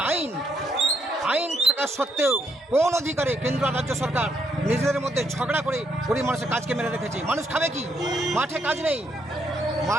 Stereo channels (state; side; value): normal; both; correlation 0.74